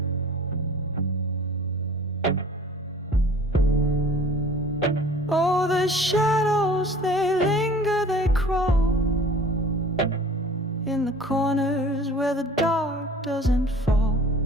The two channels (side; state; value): both; normal; correlation 0.46